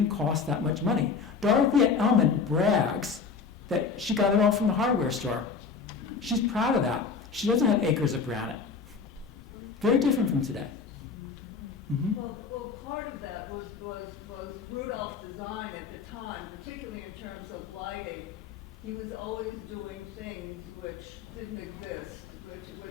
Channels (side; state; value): right; quieter; 5.3 dB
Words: cost that much money. Dorothea Elman brags that she got it all from the hardware store. She's proud of that. She doesn't have acres of granite. Very different from today. Mm-hmm. Well, part of that was Rudolph's design at the time, particularly in terms of lighting. He was always doing things which didn't exist,